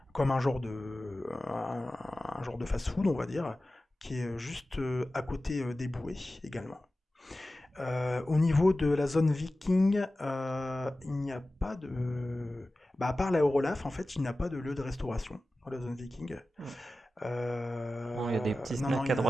comme un genre de fast-food, on va dire, qui est juste à côté des bouées également. Au niveau de la zone viking, il n'y a pas de... à part l'Aérolaf, en fait, il n'y a pas de lieu de restauration dans la zone viking. Bon, il y a des petits Non, snacks il à n'y en a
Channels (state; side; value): normal; both; correlation 0.95